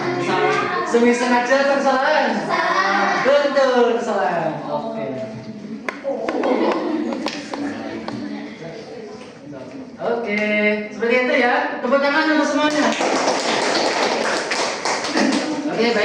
Semi sengaja atau kesalahan? Betul, kesalahan. Oke. Oke, seperti itu ya. Tepuk tangan untuk semuanya. Oke,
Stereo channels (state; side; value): identical; both; correlation 1.00